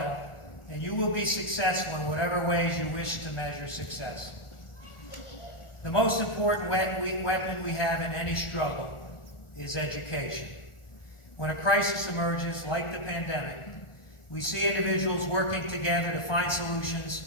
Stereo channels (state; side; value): late; right; 1.4 ms